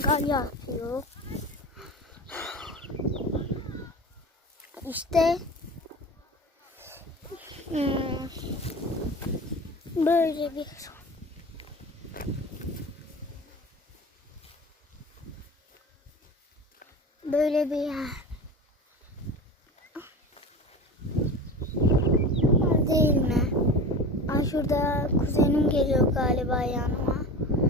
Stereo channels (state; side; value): normal; both; correlation 0.32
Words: yapıyor. İşte böyle bir yer. Değil mi? Şurada kuzenim geliyor galiba yanıma.